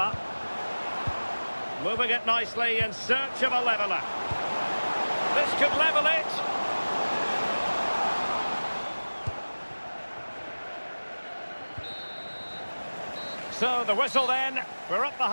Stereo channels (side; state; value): both; inverted; correlation -1.00